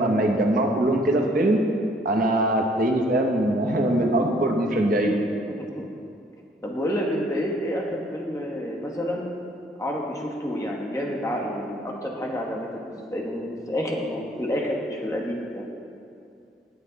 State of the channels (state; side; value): normal; both; correlation 0.61